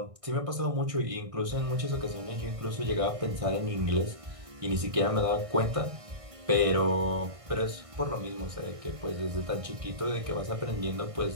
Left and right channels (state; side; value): late; left; 1.6 ms